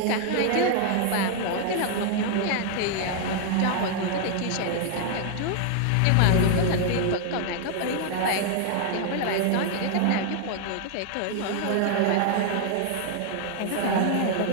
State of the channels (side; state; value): both; different; correlation 0.00